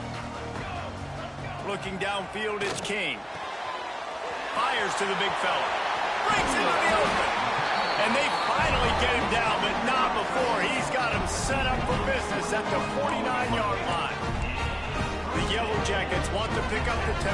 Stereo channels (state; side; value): identical; both; correlation 1.00